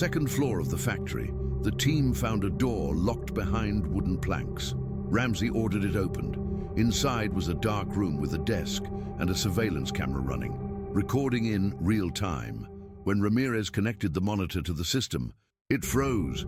floor of the factory, the team found a door locked behind wooden planks. Ramsey ordered it opened. Inside was a dark room with a desk and a surveillance camera running, recording in real time. When Ramirez connected the monitor to the system, it froze.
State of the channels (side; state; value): both; identical; correlation 1.00